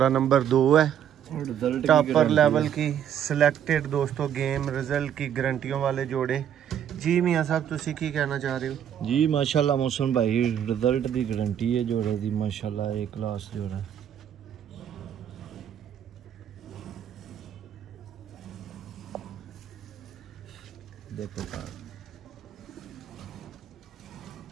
नंबर 2 है, टॉपर लेवल की सिलेक्टेड दोस्तों गेम रिजल्ट की गारंटियों वाले जोड़े। जी मियाँ साहब तुसी की कहना चाह रहे हो? जी माशाल्लाह मौसम भाई रिजल्ट की गारंटी है जोड़े की, माशाल्लाह A+ जोड़ा। देखो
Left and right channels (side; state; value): left; quieter; 9.5 dB